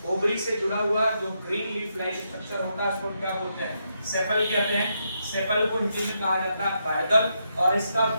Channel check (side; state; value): both; inverted; correlation -0.81